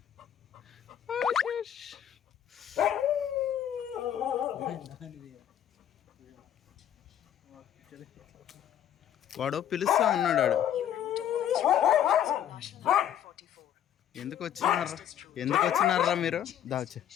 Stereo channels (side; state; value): right; quieter; 10.3 dB